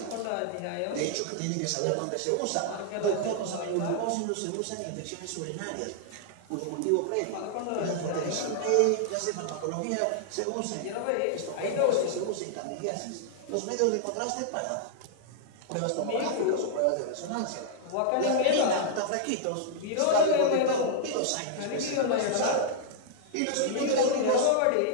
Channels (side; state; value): both; different; correlation -0.01